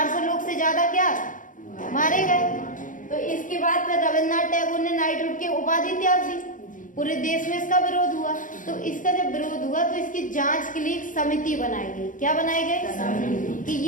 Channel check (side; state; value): right; late; 0.38 ms